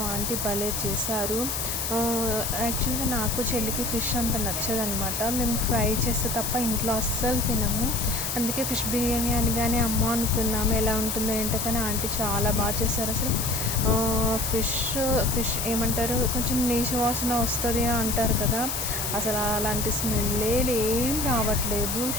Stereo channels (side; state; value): left; noise; hiss, 2 dB below the sound